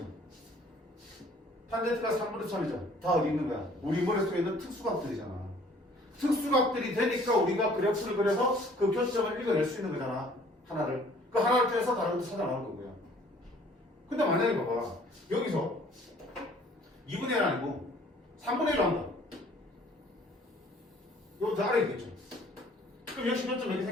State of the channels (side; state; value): both; normal; correlation 0.55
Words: 탄젠트가 3분의 3이죠. 다 어디 있는 거야? 우리 머릿속에 있는 특수각들이잖아. 특수각들이 되니까 우리가 그래프를 그려서 그 교점을 읽어낼 수 있는 거잖아. 하나를. 그 하나를 통해서 다른 것도 찾아 나올 거고요. 근데 만약에 봐봐. 여기서 2분의 1 아니고 3분의 1로 한다. 이거 더 아래 있겠죠. 그럼 역시 교점 몇 개